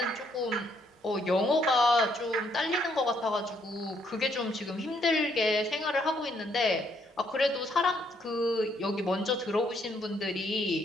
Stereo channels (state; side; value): normal; both; correlation 0.71